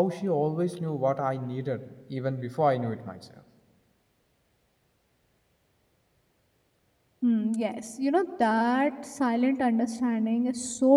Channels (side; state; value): both; identical; correlation 1.00